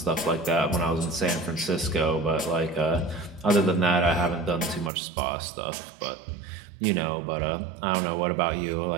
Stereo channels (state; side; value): drops out; left; at 4.9 s